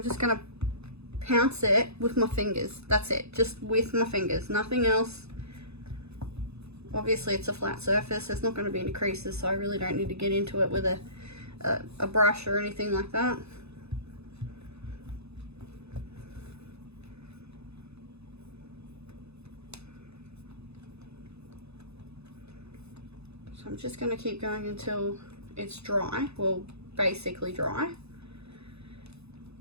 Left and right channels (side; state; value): left; late; 0.79 ms